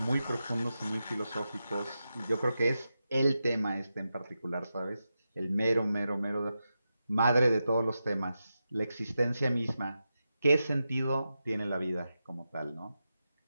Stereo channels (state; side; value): inverted; both; correlation -0.89